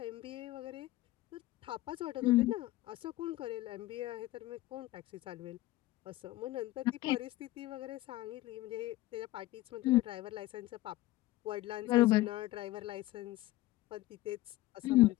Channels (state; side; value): quieter; right; 17.1 dB